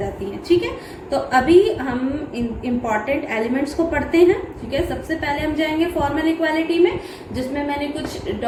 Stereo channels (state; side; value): identical; both; correlation 1.00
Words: हैं। ठीक है, तो अभी हम इम्पॉर्टेंट एलिमेंट्स को पढ़ते हैं। ठीक है, सबसे पहले हम जाएंगे फॉर्मल इक्वालिटी में, जिसमें मैंने कुछ